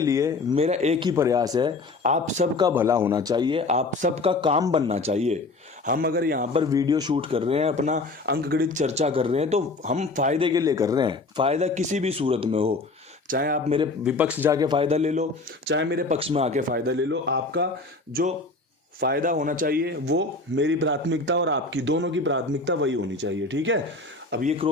मेरा एक ही प्रयास है, आप सबका भला होना चाहिए, आप सबका काम बनना चाहिए। हम अगर यहाँ पर वीडियो शूट कर रहे हैं, अपना अंकगणित चर्चा कर रहे हैं, तो हम फायदे के लिए कर रहे हैं। फायदा किसी भी सूरत में हो, चाहे आप मेरे विपक्ष जाके फायदा ले लो, चाहे मेरे पक्ष में आके फायदा ले लो, आपका जो फायदा होना चाहिए वो मेरी प्राथमिकता और आपकी दोनों की प्राथमिकता वही होनी चाहिए। ठीक है, अब ये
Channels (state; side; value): quieter; right; 3.4 dB